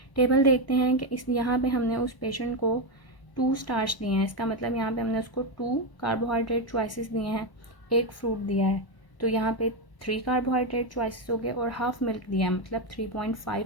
टेबल देखते हैं कि इस यहाँ पे हमने उस पेशेंट को 2 स्टार्च दिए हैं, इसका मतलब यहाँ पे हमने उसको 2 कार्बोहाइड्रेट चॉइसेस दिए हैं, 1 फ्रूट दिया है, तो यहाँ पे 3 कार्बोहाइड्रेट चॉइसेस हो गए, और हाफ मिल्क दिया है, मतलब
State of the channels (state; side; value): late; right; 1.0 ms